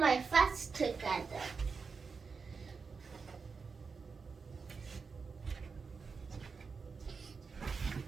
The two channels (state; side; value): quieter; left; 5.1 dB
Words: my vest together.